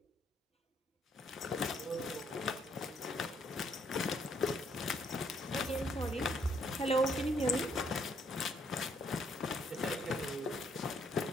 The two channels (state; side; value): normal; both; correlation 0.69